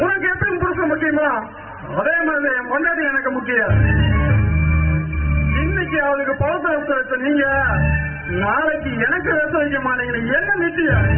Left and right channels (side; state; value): both; identical; correlation 1.00